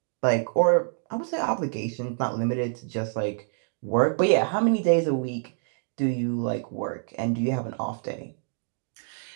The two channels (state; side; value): silent; left; digital silence